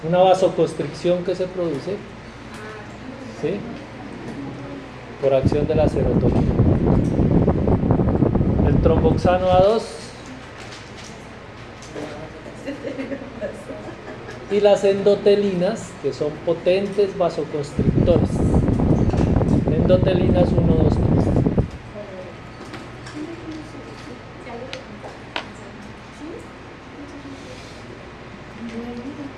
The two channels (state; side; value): identical; both; correlation 1.00